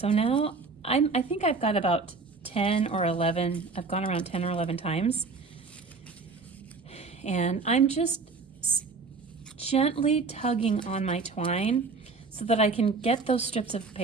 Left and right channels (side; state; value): left; quieter; 4.3 dB